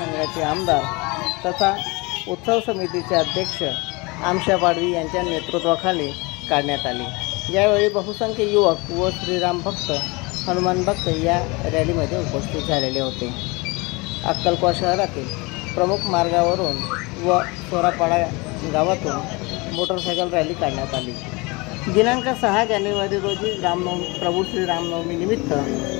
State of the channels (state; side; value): quieter; right; 26.0 dB